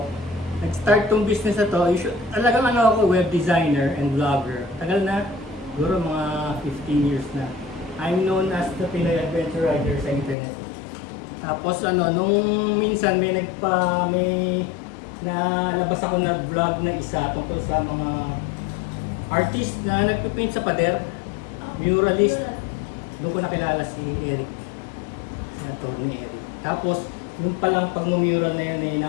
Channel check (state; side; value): drops out; right; at 10.4 s